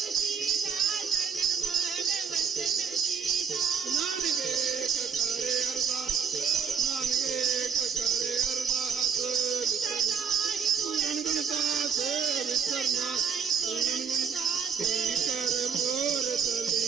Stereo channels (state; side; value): quieter; left; 6.6 dB